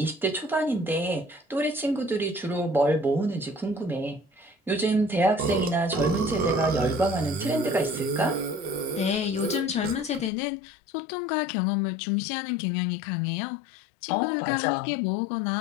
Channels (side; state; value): right; drops out; at 10.3 s